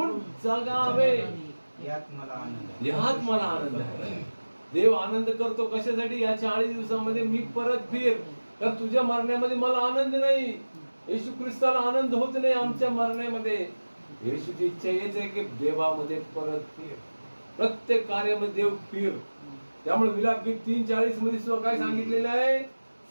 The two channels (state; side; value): inverted; both; correlation -1.00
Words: जगावे यात मला आनंद आहे. देव आनंद करतो कशासाठी? या 40 दिवसामध्ये मी परत फिर. तर तुझ्या मरण्यामध्ये मला आनंद नाही. येशू ख्रिस्ताला आनंद होत नाही आमच्या मरण्यामध्ये. येशूची इच्छा हेच आहे की देवामध्ये परत फिर. प्रत्येक कार्यामध्ये देव फिर. त्यामुळे विलापगीत 3:40 मध्ये सुद्धा काय सांगितलेलं आहे?